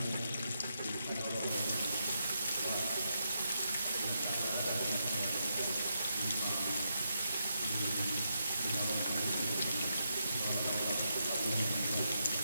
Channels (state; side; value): inverted; both; correlation -0.83